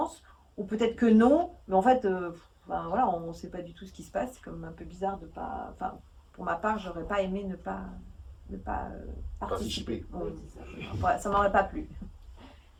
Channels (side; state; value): both; identical; correlation 1.00